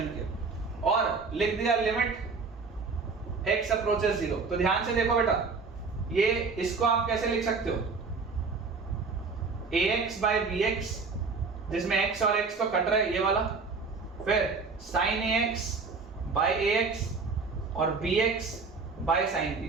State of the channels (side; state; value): left; quieter; 4.5 dB